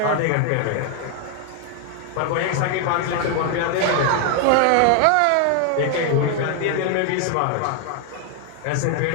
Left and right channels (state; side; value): different; both; correlation 0.00